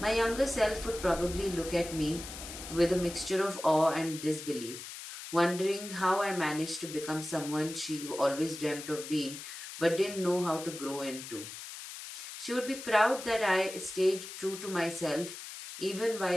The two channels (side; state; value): left; noise; hiss, 11 dB below the sound